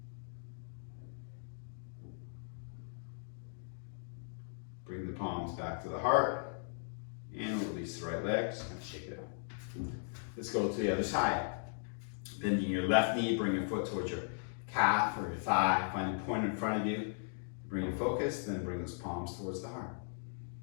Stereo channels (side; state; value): right; silent; digital silence